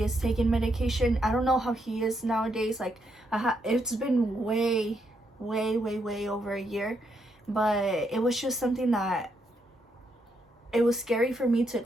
is taking medication. I don't know how he is nowadays. Like, it's been way over a year, but it was just something that it was scary for me to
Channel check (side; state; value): both; normal; correlation 0.78